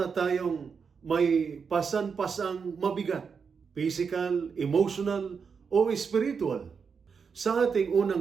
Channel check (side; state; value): left; quieter; 5.9 dB